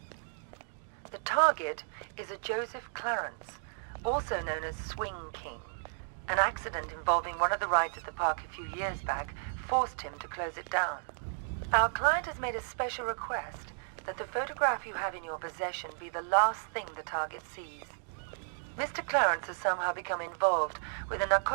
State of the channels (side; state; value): left; silent; digital silence